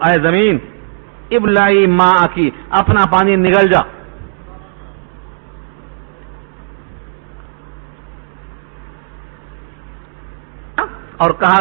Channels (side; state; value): left; silent; digital silence